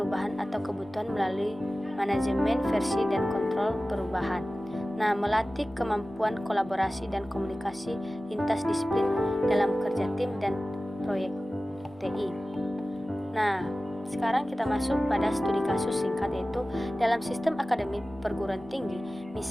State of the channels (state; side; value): normal; both; correlation 0.96